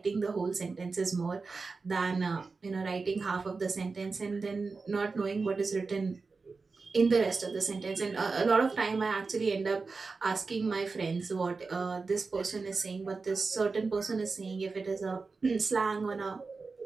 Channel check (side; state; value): left; quieter; 4.3 dB